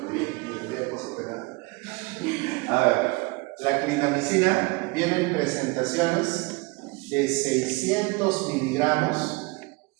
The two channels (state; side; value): quieter; left; 26.1 dB